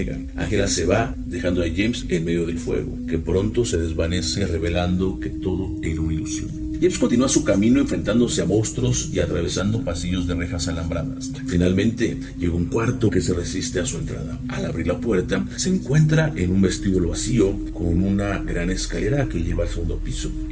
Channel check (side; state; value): both; identical; correlation 1.00